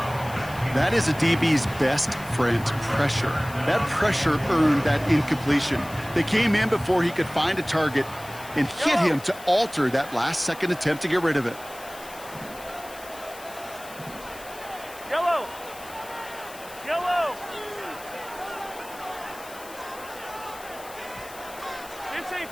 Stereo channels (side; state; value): left; noise; hiss, 18 dB below the sound